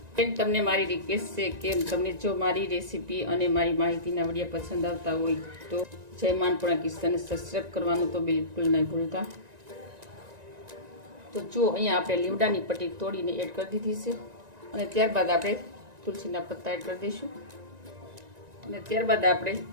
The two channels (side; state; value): left; late; 1.9 ms